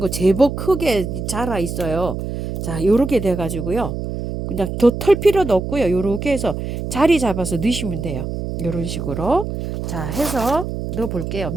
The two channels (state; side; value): noise; right; hum, 5 dB below the sound